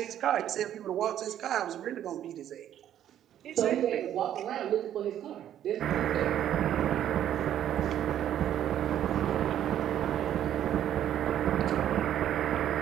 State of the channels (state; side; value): quieter; left; 10.9 dB